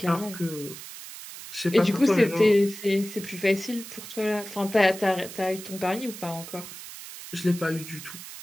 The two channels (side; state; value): right; noise; hiss, 13 dB below the sound